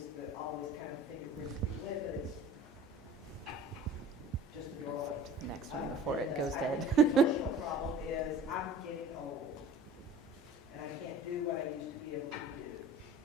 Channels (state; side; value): normal; both; correlation 0.44